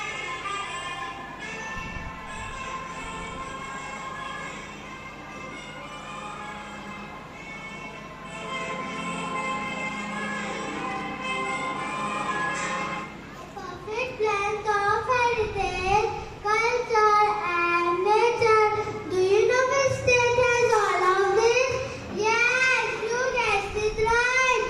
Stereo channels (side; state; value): both; identical; correlation 1.00